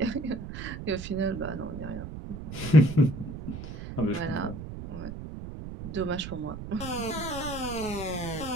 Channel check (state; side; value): noise; right; rumble, 9 dB below the sound